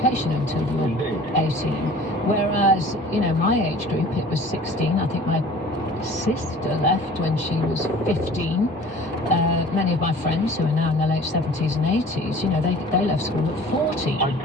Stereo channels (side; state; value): both; normal; correlation 0.46